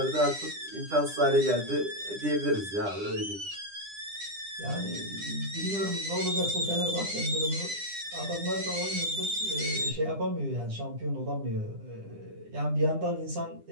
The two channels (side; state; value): left; late; 9.9 ms